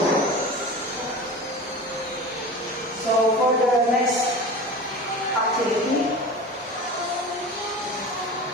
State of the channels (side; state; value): both; normal; correlation 0.33